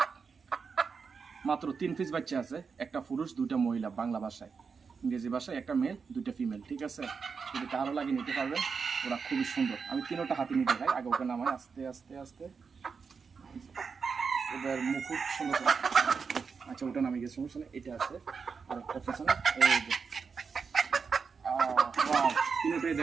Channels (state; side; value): quieter; left; 5.5 dB